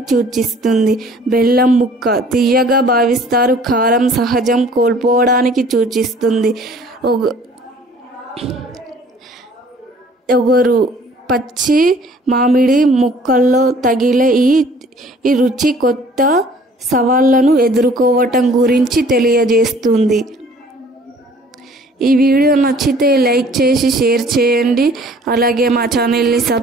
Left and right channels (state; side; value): normal; both; correlation 0.54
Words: సూచిస్తుంది. బెల్లం ముక్క తీయగా భావిస్తారు. కారం సహజం కోల్పోవడానికి సూచిస్తుంది. ఒగరు పచ్చి మామిడి ముక్కల్లో తగిలే ఈ రుచి కొత్త సవాళ్లను ఎదుర్కోవటం గురించి తెలియజేస్తుంది. ఈ వీడియో నచ్చితే లైక్ చేసి షేర్ చేయండి. అలాగే మా ఛానల్ని